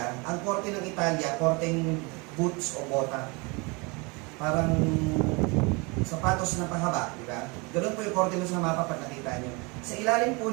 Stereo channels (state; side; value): quieter; left; 28.2 dB